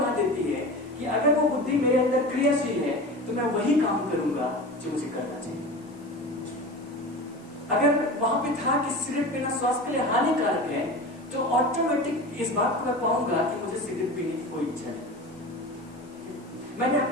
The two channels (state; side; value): noise; left; hiss, 29 dB below the sound